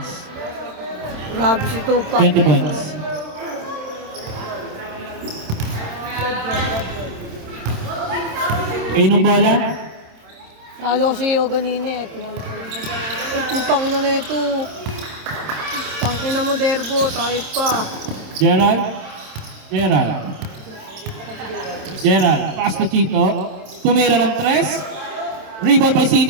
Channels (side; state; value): left; late; 27 ms